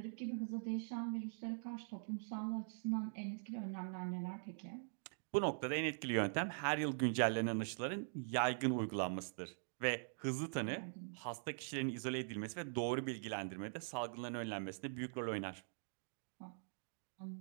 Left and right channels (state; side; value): silent; left; digital silence